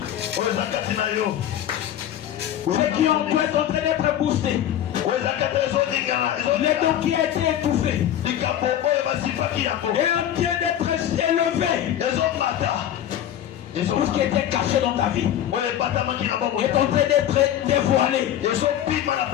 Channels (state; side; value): quieter; right; 11.0 dB